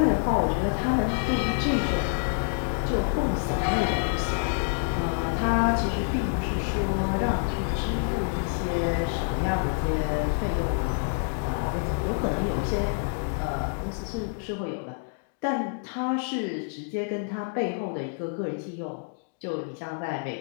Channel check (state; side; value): silent; right; 60 dB below the other